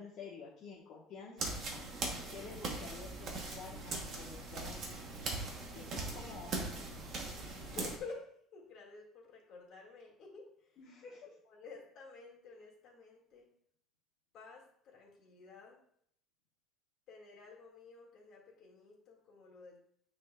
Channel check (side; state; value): both; normal; correlation 0.42